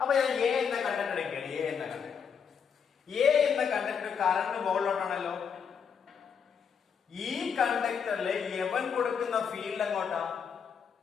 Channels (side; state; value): right; quieter; 6.8 dB